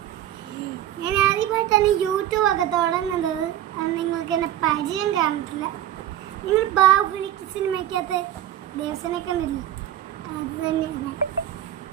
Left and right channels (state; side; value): quieter; left; 11.9 dB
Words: ഞാൻ ആദ്യമായി തന്നെ യൂട്യൂബ് ഒക്കെ തുടങ്ങുന്നത്. അത് നിങ്ങൾക്ക് എന്നെ പരിചയം കാണത്തില്ല. നിങ്ങൾ ബാഹുബലി സിനിമയ്ക്കകത്ത് ദേവസനെ കണ്ടില്ലേ? അത് തന്നെയാണ്.